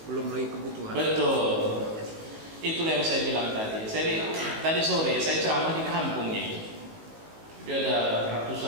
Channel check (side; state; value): left; late; 19 ms